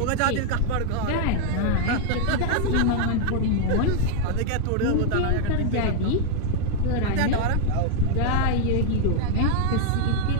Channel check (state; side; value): different; both; correlation 0.00